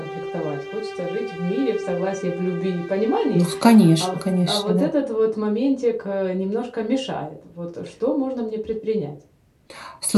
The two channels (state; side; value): identical; both; correlation 1.00